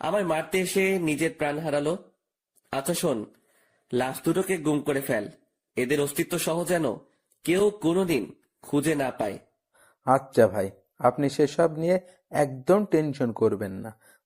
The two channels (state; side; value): identical; both; correlation 1.00